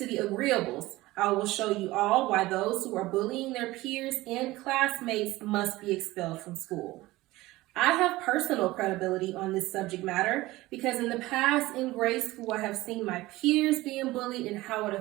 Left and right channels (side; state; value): left; quieter; 18.7 dB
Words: the agreeables, I will show you all why those who are bullying their peers and classmates must be expelled from school. I have personal credibility on this subject matter because in the past in grade school I have seen my peers being bullied and how it